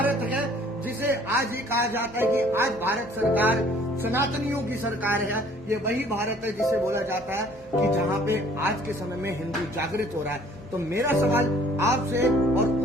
है जिसे आज ये कहा जाता है कि आज भारत सरकार सनातनियों की सरकार है। ये वही भारत है जिसे बोला जाता है कि जहाँ पे आज के समय में हिंदू जागृत हो रहा है। तो मेरा सवाल आपसे और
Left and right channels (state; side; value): normal; both; correlation 0.56